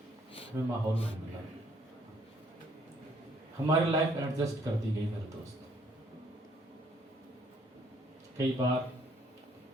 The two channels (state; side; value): normal; both; correlation 0.65